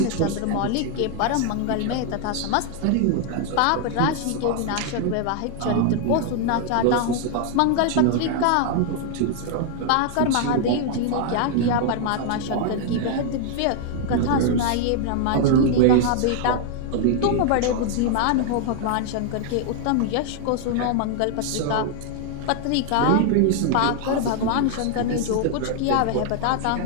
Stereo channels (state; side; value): different; both; correlation 0.00